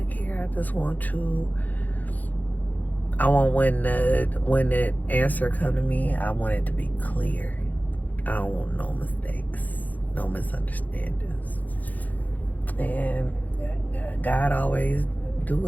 care. I just want to. I want when the answer come to me, I want it to be clear. I don't want no mistakes, no misunderstandings. And God always do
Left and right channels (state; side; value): late; right; 0.081 ms